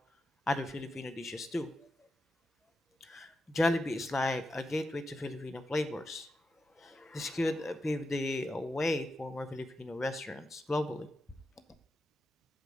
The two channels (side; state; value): both; normal; correlation 0.88